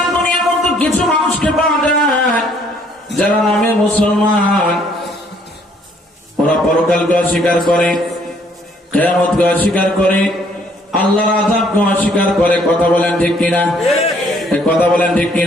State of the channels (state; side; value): normal; both; correlation 0.64